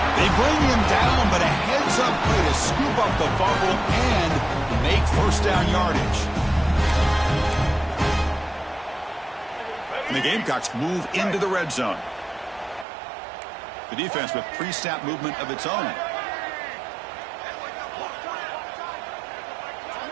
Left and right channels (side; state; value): left; drops out; at 12.9 s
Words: They bring him down, but a heads-up play to scoop up the fumble and make 1st down yardage. And the Gamecocks move into the red zone. The defense with pre-snap movement of its own.